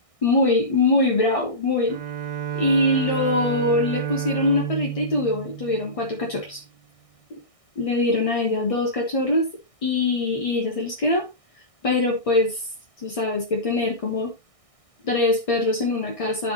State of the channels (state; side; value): late; right; 1.6 ms